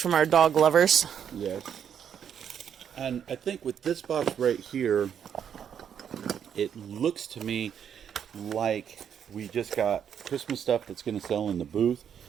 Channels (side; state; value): left; quieter; 8.4 dB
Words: our dog lovers. Yes. And I think with this box right here, it looks to me like we just got Christmas stuff that's going to sell in the booth,